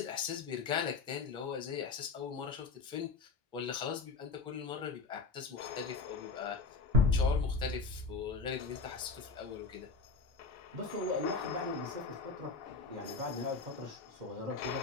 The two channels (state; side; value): quieter; right; 4.3 dB